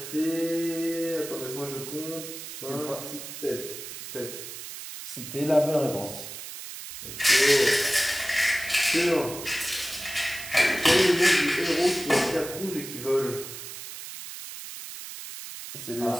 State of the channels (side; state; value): right; noise; hiss, 10 dB below the sound